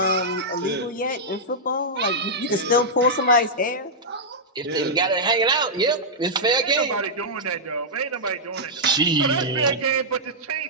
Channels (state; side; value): normal; both; correlation -0.09